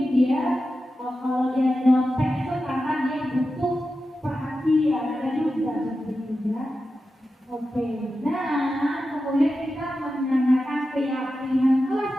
dia kalau dia nyontek itu karena dia butuh perhatian, ada juga begitu ya. Oke, nah kemudian kita menanyakan keyakinan kelas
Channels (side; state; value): both; normal; correlation 0.92